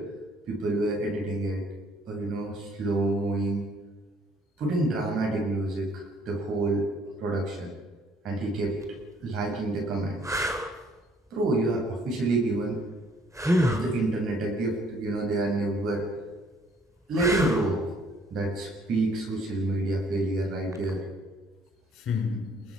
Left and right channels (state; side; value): normal; both; correlation 0.62